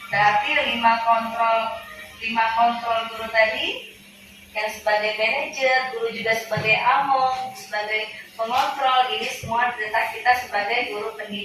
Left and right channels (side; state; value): both; identical; correlation 1.00